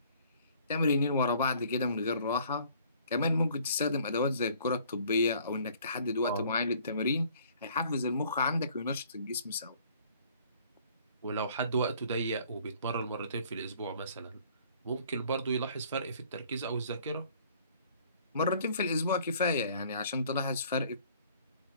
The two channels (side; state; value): both; inverted; correlation -0.57